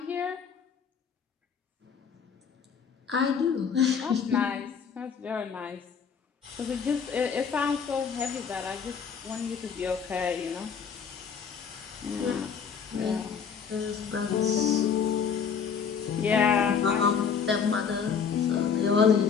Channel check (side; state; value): right; quieter; 6.6 dB